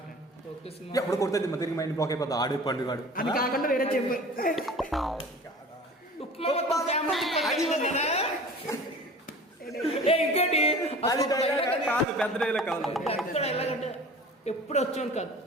పోకిరి సినిమా ఎప్పుడు కొడుతుంది తిరిగి మైండ్ బ్లాక్ అయిపోతుంది. ఆడు పండుగ అది కాకుండా వేరే చెప్పు. ఇంకోటి పెద్ద డైలాగ్ కాదు. ఎప్పుడు వచ్చాను కాదు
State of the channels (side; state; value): both; normal; correlation 0.41